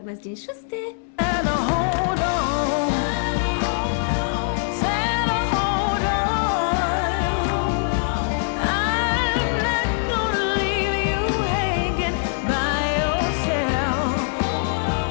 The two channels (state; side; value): silent; right; digital silence